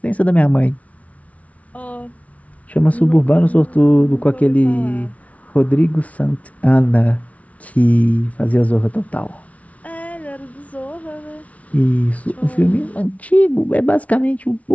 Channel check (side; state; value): right; late; 0.067 ms